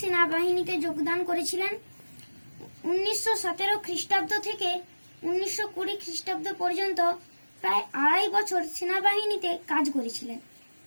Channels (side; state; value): both; inverted; correlation -1.00